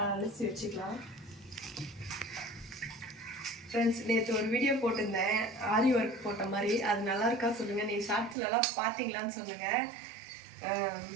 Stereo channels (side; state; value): left; drops out; at 8.3 s